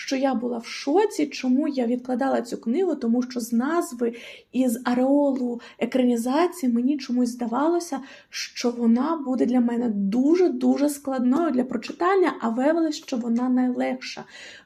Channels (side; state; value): both; identical; correlation 1.00